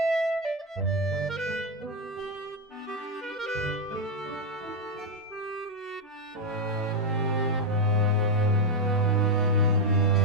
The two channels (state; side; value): normal; both; correlation 0.03